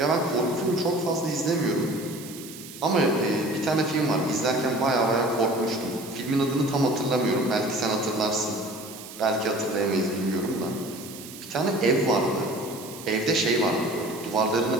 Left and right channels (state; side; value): noise; right; hiss, 15 dB below the sound